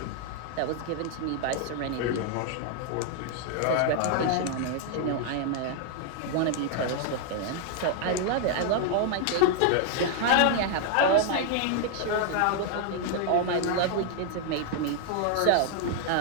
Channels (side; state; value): both; different; correlation 0.00